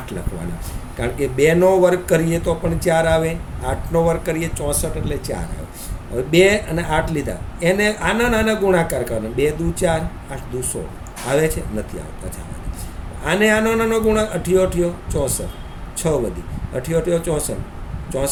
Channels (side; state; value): both; identical; correlation 1.00